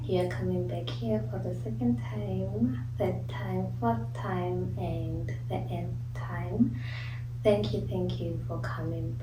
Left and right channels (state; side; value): identical; both; correlation 1.00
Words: you're coming back here for the second time, third time, fourth time, and the nth time. Thank you for coming